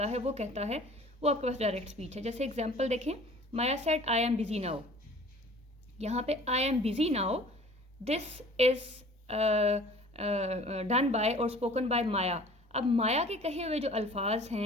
है, वो कहता है, वो आपके पास डायरेक्ट स्पीच है. जैसे एग्जांपल देखें, Maya said I am busy now. यहाँ पे I am busy now, this is done by और स्पोकन बाय माया. अब माया के कहे हुए जो अल्फाज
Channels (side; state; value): both; normal; correlation 0.48